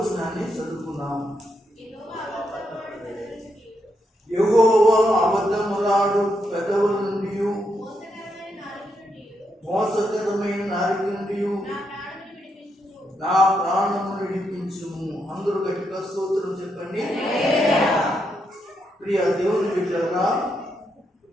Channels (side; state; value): both; normal; correlation 0.80